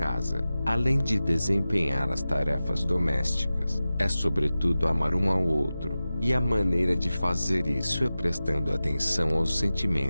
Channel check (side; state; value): both; inverted; correlation -0.95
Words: além de desempenhar as tarefas domésticas, é sobretudo amar um ao outro, e a maneira de fazer isso é prestando atenção aos